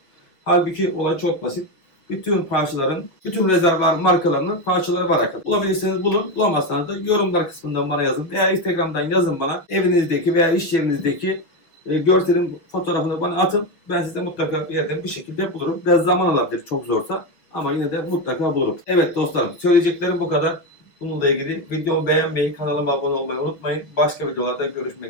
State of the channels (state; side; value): late; right; 6.5 ms